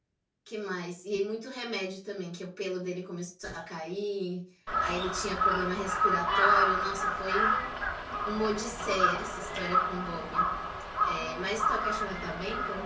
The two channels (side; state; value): both; identical; correlation 1.00